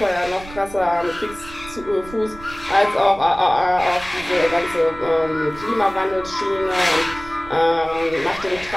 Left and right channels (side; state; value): right; noise; rumble, 17 dB below the sound